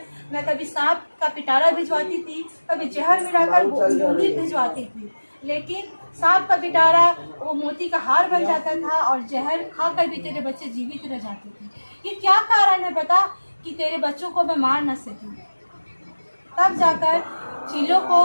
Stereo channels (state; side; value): inverted; both; correlation -1.00